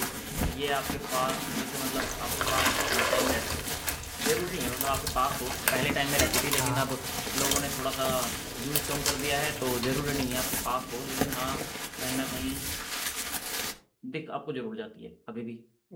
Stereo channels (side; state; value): both; identical; correlation 1.00